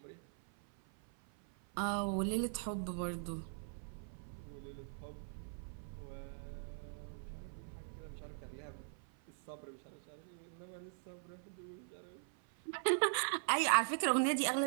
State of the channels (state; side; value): silent; left; 50 dB below the other